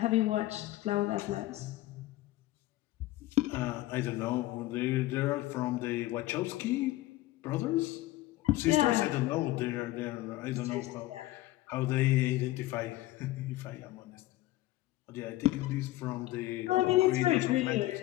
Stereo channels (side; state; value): right; quieter; 17.1 dB